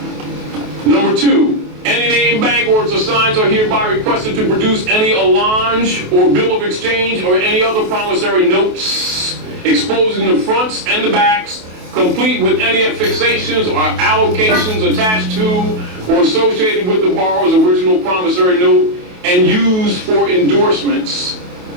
Number 2. Any named bank or its assigns are hereby requested to produce any allonge or bill of exchange or any other promissory notes exposing the fronts and the backs, complete with any affixations or allocations attached to or associated with the borrower's original promissory note and used for endorsements.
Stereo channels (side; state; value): left; late; 28 ms